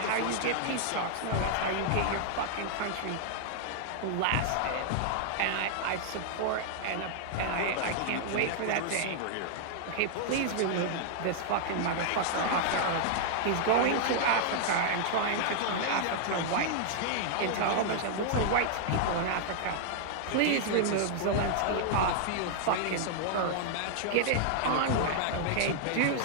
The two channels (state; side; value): different; both; correlation -0.01